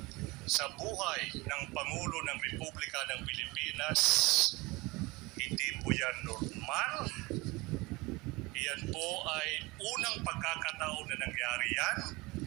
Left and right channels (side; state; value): left; quieter; 23.4 dB